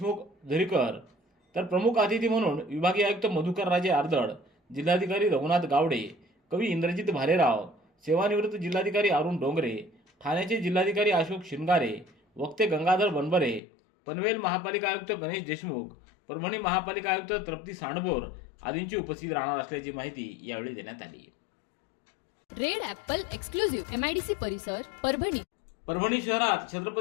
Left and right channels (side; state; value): right; drops out; at 13.6 s